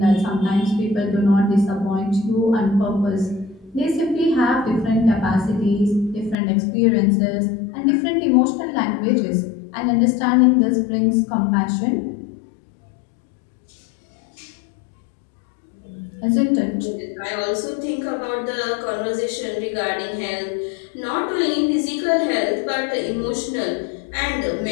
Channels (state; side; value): drops out; right; at 6.4 s